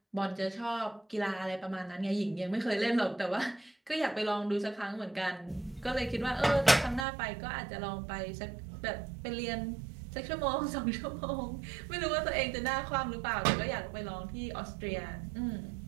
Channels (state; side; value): drops out; left; at 7.1 s